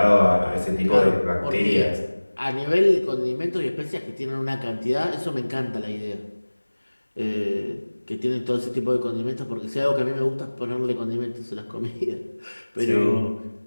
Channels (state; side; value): inverted; both; correlation -1.00